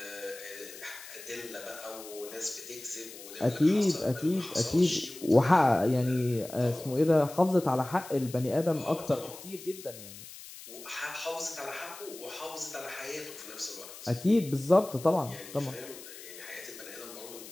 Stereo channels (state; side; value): noise; left; hiss, 15 dB below the sound